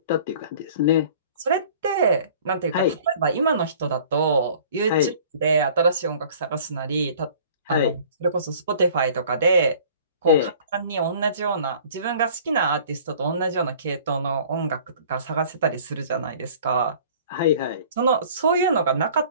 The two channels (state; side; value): inverted; both; correlation -0.49